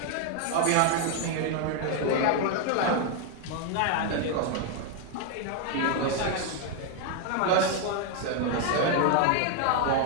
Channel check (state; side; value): different; both; correlation 0.00